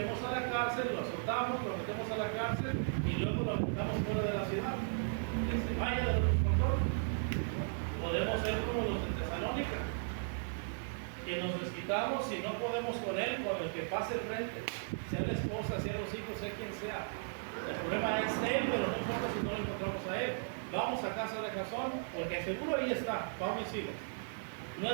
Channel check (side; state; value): left; silent; digital silence